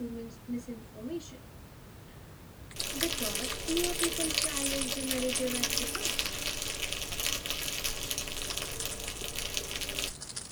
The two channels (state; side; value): identical; both; correlation 1.00